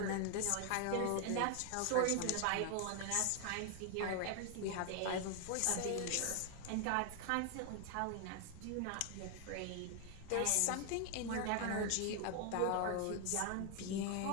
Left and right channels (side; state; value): both; different; correlation 0.00